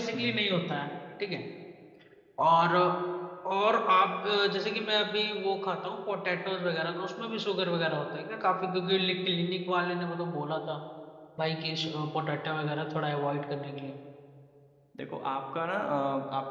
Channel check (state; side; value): identical; both; correlation 1.00